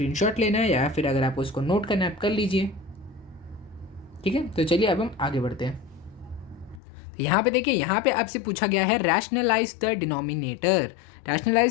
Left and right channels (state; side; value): drops out; right; at 6.8 s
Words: लेना है या फिर अगर आपको इसको नोट करना है आप कर लीजिए, ठीक है। तो चलिए अब हम आगे बढ़ते हैं। यहाँ पे देखिए, यहाँ पे आपसे पूछा गया है rationalize the denominator.